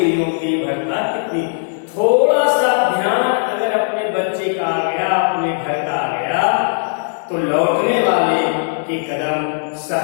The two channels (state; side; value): silent; right; digital silence